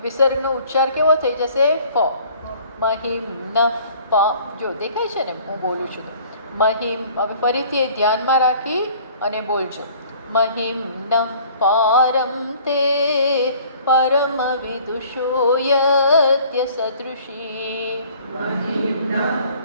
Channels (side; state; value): both; inverted; correlation -0.53